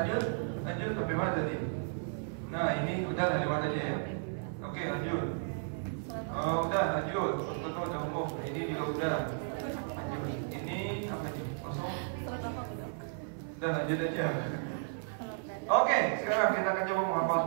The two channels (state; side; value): silent; left; 55 dB below the other